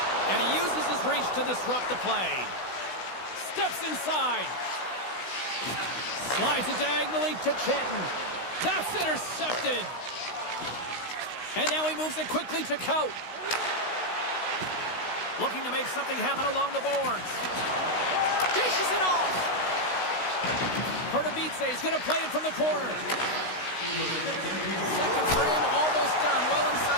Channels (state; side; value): late; right; 16 ms